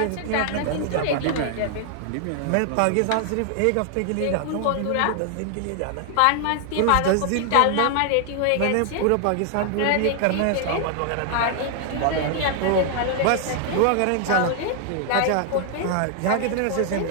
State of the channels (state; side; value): different; both; correlation 0.00